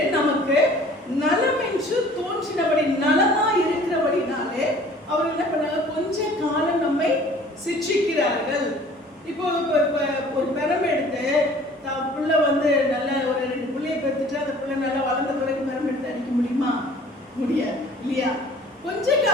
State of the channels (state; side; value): normal; both; correlation 0.50